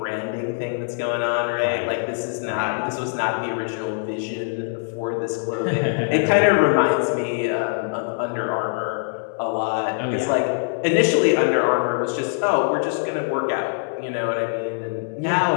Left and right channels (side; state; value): right; silent; digital silence